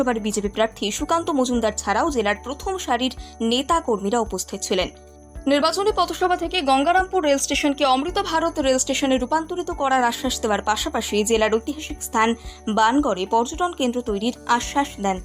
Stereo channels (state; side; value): identical; both; correlation 1.00